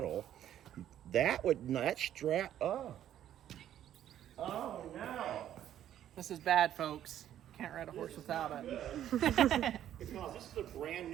That strap. Oh no! This is bad, folks. Can't ride a horse without it. Because this is a brand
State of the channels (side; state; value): left; quieter; 11.2 dB